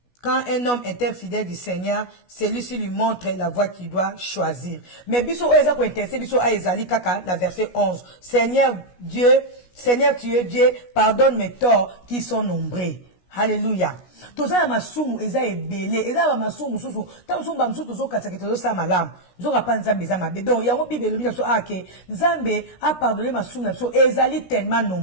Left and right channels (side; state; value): right; late; 16 ms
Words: Quand un homme est infidèle du Seigneur, celui-ci lui montre la voie qu'il doit choisir. Mais biso oeza ko intéressé biso a ezali kaka na verset 11. Seigneur tu es Dieu, pardonne mes torts qui sont nombreux. Alléluia. Toza ya masumu eza ebele, eza ba masumu susu. Ta masumu ba msusu tozo katsa ke tozo sa malamu. Zoka pa nzambe za mabe. Donc yango Bible lobi na so ake, nzambe a pardonné masumu na so ezali tellement